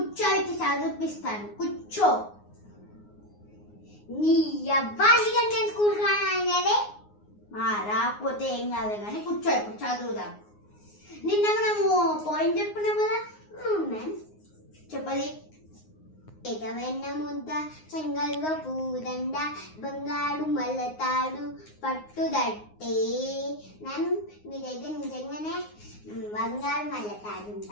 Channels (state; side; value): late; right; 9.6 ms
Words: చదివిపిస్తాను. కూర్చో. నీ అబ్బాయి నేను స్కూల్ రానదే రాకపోతే ఏం కాదు కానీ కూర్చో, ఇప్పుడు చదువుదాం. నిన్న మనము పాయింట్ చెప్పుకున్నాం కదా మ్యామ్. చెప్పది. ఎగవెన్న ముద్ద చెంగల్వ పూదండ బంగారు మల్లతాడు పట్టుదట్టే. మ్యామ్ మీ దగ్గర నిజంగానే బంగారు మల్లతాడు